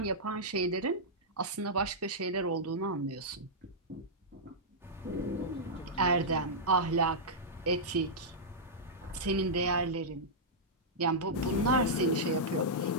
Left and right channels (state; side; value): normal; both; correlation -0.10